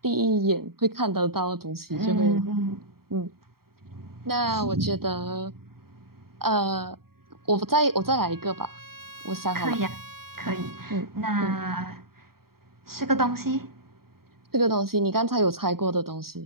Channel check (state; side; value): late; left; 0.94 ms